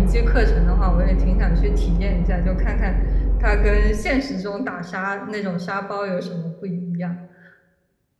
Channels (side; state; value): both; identical; correlation 1.00